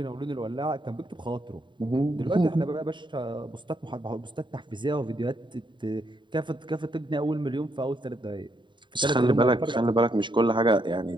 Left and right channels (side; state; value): left; late; 0.23 ms